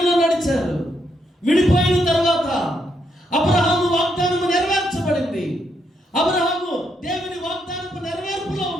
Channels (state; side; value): normal; both; correlation 0.77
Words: నడిచారు. విడిపోయిన తర్వాత అబ్రహాము వాగ్దానము నెరవేర్చబడింది. అబ్రహాము దేవుని వాగ్దానపు నెరవేర్పులో